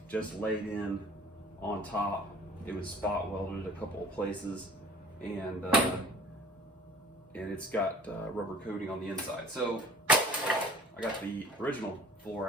just laid in on top. It was spot welded a couple of places, and it's got rubber coating on the inside. So I got the original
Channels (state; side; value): normal; both; correlation 0.46